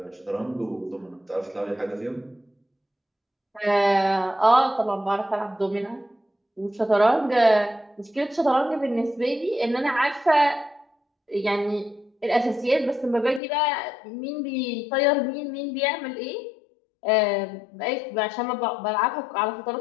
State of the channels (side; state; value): right; drops out; at 13.4 s